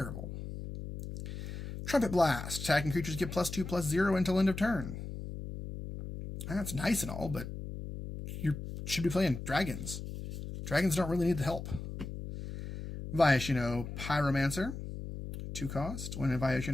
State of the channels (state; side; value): noise; left; hum, 8 dB below the sound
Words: Trumpet Blast. Attacking creatures get +2/+0 until end of turn. That's nice and all, but you should be playing dragons. Dragons don't really need the help. Viashino Pyromancer. 2 cost. When a